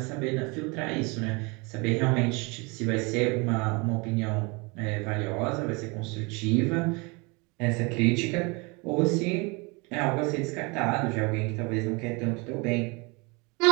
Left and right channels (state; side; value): quieter; left; 28.7 dB